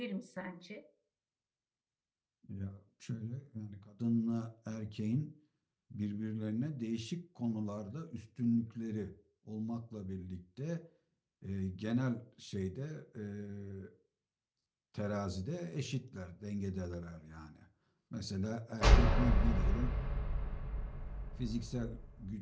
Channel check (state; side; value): identical; both; correlation 1.00